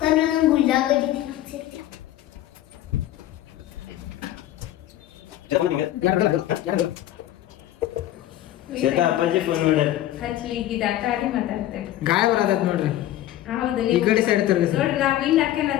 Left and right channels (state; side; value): quieter; right; 13.5 dB